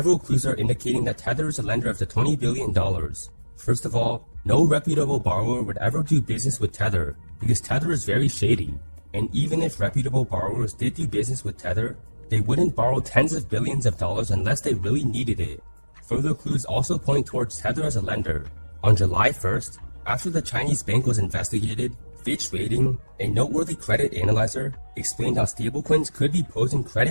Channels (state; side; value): inverted; both; correlation -1.00